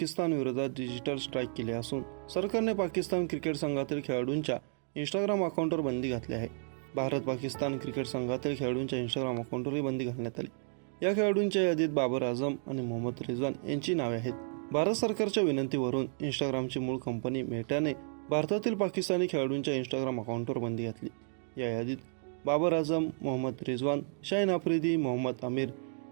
विरोधात digital strike केले असून सरकारने पाकिस्तान क्रिकेट संघातील खेळाडूंच्या इंस्टाग्राम अकाउंटवर बंदी घातली आहे. भारत पाकिस्तान क्रिकेट संघातील खेळाडूंच्या इंस्टाग्राम अकाउंटवरही बंदी घालण्यात आली. या खेळाडूंच्या यादीत बाबर आझम आणि मोहम्मद रिजवान यांची नावे आहेत. भारत सरकारच्या विनंतीवरून इंस्टाग्रामची मूळ कंपनी मेटाने भारतातील पाकिस्तानी खेळाडूंच्या इंस्टाग्राम अकाउंटवर बंदी घातली. या यादीत बाबर आझम, मोहम्मद रिजवान, शाहीन आफ्रिदी, मोहम्मद आमिर,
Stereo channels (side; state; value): left; silent; 56 dB below the other